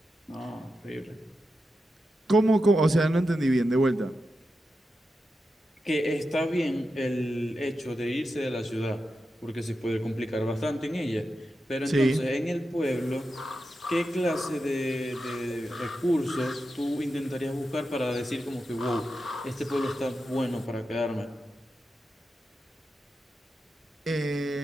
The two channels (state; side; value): normal; both; correlation 0.89